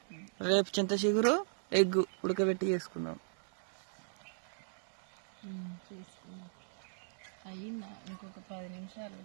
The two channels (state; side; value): silent; left; digital silence